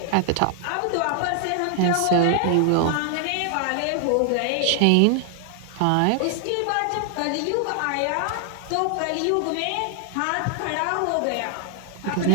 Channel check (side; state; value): both; different; correlation 0.00